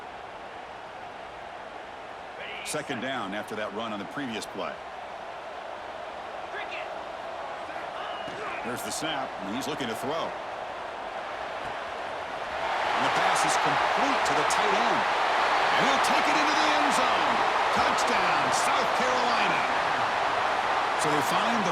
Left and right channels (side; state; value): both; identical; correlation 1.00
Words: Second down after that run on the previous play. There's the snap, and he's looking to throw. And the pass is complete to the tight end. And he'll take it into the end zone. Touchdown, South Carolina. So they find